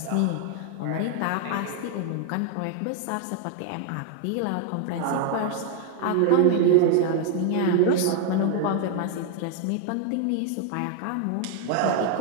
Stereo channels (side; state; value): both; different; correlation 0.00